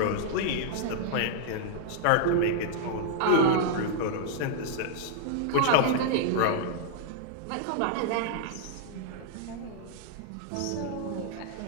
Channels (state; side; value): different; both; correlation -0.01